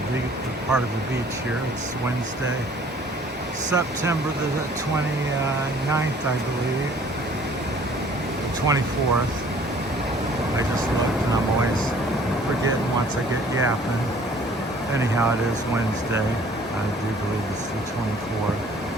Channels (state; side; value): normal; both; correlation 0.55